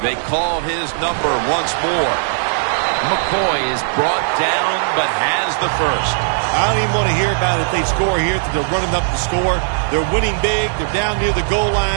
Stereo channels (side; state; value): left; silent; digital silence